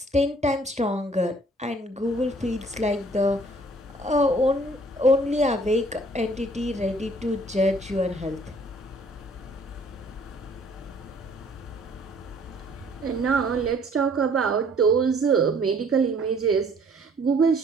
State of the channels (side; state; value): both; normal; correlation 0.58